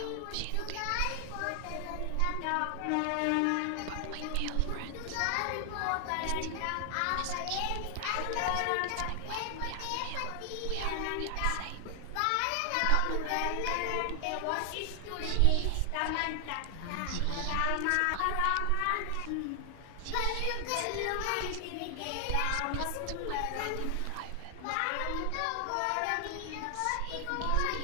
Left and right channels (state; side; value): different; both; correlation 0.00